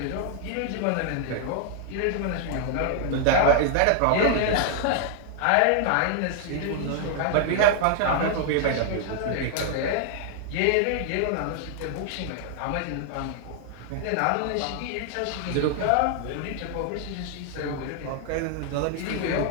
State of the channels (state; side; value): different; both; correlation 0.00